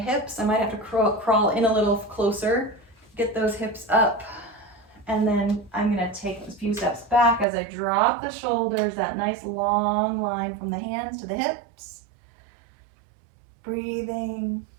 I might have to crawl in a little closer, get those hips up. And then I'm going to take a few steps back as I drop the shoulders, that nice long line from the hands to the hips. Breathing.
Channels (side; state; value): left; drops out; at 7.5 s